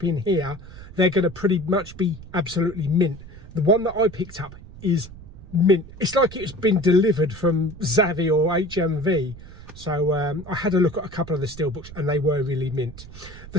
in here, they're going to pretty much be absolutely mint. The one that I picked up is mint. It's like it's been delivered from Zavvi or HMV. So I had a look at a couple of the Steelbooks and they were really mint. The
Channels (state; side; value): noise; right; rumble, 16 dB below the sound